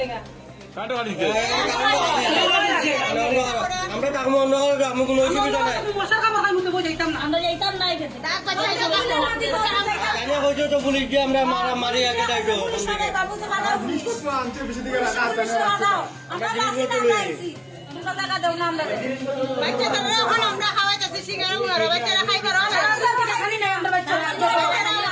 আমরা থাকবো অন্য কোনো অসুবিধা নাই হয়েছে তো পুলিশ দিয়ে আমরা মারি আগে যাইতো আমরা খাওয়াইতেছি সিঙ্গারা বাচ্চারা খাই করো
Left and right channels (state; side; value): identical; both; correlation 1.00